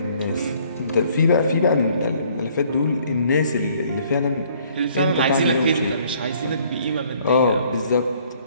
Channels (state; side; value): inverted; both; correlation -0.61